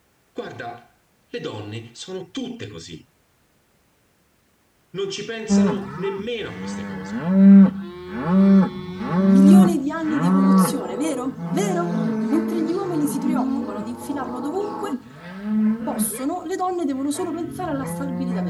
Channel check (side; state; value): both; identical; correlation 1.00